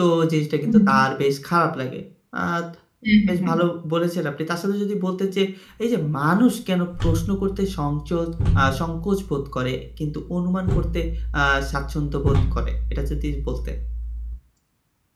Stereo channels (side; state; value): both; identical; correlation 1.00